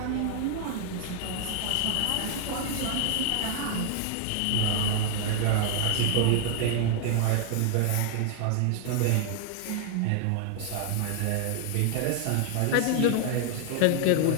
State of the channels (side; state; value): both; different; correlation 0.00